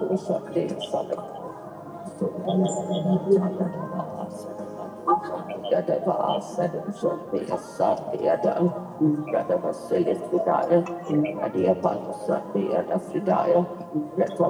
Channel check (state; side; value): identical; both; correlation 1.00